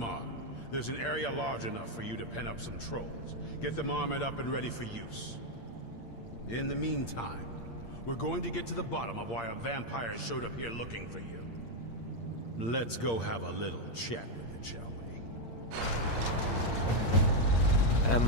there's an area large enough for you to pen up some trolls. Get them armored up and ready for use. In the meantime, we're going to get to the bottom of why a vampire showed up here looking for you. Let's go have a little chat with it, shall we?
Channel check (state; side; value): late; right; 8.7 ms